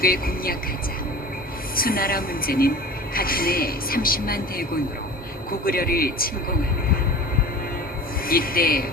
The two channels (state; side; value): normal; both; correlation 0.39